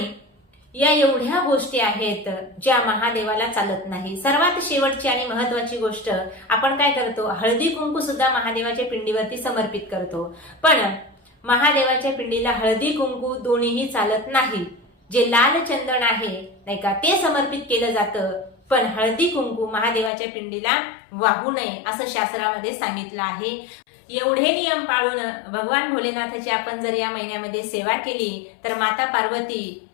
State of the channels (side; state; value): right; drops out; at 20.1 s